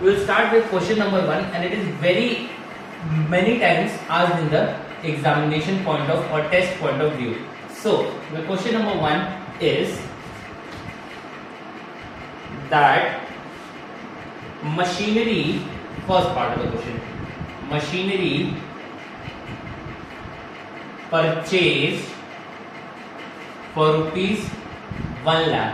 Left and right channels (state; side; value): identical; both; correlation 1.00